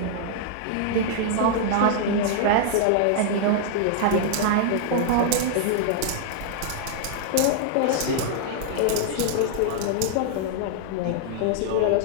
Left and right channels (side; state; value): both; different; correlation -0.01